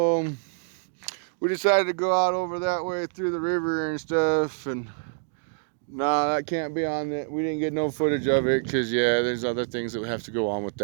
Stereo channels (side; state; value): left; silent; digital silence